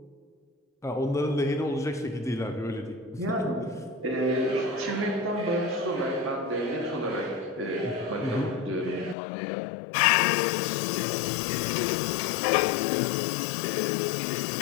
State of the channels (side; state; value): right; drops out; at 9.2 s